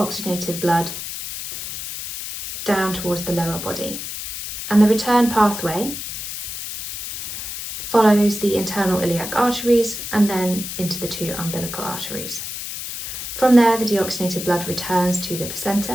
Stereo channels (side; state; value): left; noise; hiss, 7 dB below the sound